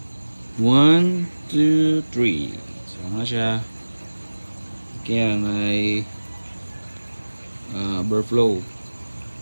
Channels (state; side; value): inverted; both; correlation -1.00